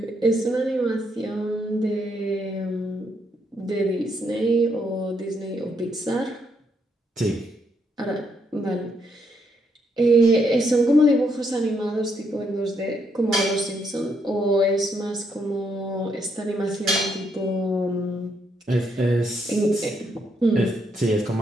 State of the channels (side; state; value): both; normal; correlation 0.76